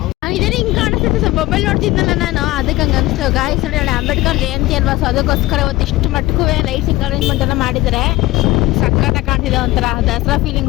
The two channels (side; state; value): right; quieter; 18.7 dB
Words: ಇದೇ ಹಿಂಗೆ ಕಾಣಿಸುತ್ತೆ. ಸ್ವಲ್ಪ ಮೊಬೈಲ್ ನೋಡ್ತಿದ್ನಲ್ಲ ನಾನು, ಅದಕ್ಕೆ ಹಂಗೆ ಅನಿಸ್ತು. ಗಾಯ್ಸ್ ನೋಡಿ, ನಾಳೆ ಅಂಬೇಡ್ಕರ್ ಜಯಂತಿ ಅಲ್ವಾ, ಸೊ ಅದಕ್ಕೋಸ್ಕರ ಇವತ್ತು ಇಷ್ಟು ಮಟ್ಟಕ್ಕೂ ಲೈಟಿಂಗ್ ಅರೇಂಜ್ಮೆಂಟ್ ಎಲ್ಲ ಮಾಡಿದ್ದಾರೆ. ಸಖತ್ತಾಗಿ ಕಾಣ್ತಿದೆ, ಒಂಥರ ದಸರಾ ಫೀಲಿಂಗ್